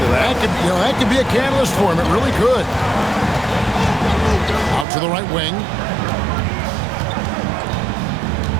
of that. That could be a catalyst for him. It really could. Out to the right wing.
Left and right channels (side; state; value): left; drops out; at 4.9 s